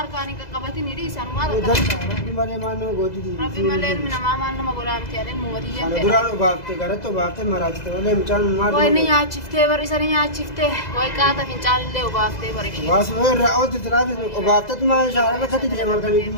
كاني كقبتي نريس أنا ما أدري ربي مالي ما نو قوتي دي ربي مالي من ما ما قولها بتيالين موتيجا أنا درا بافته قرأت بافته مراتي تقولي مچان ما وين يا شفته بريساني يا شفته وين كاتا في چال اللي وبافته بريشي واس وين رأوت تلافي وبافته ما شاء الله كتير جمال كلي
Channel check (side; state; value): right; late; 2.0 ms